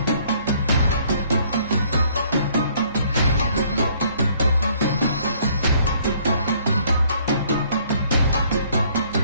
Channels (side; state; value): both; inverted; correlation -0.62